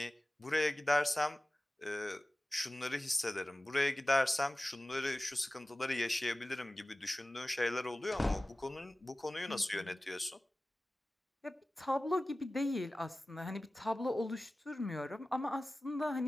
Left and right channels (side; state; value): both; normal; correlation 0.97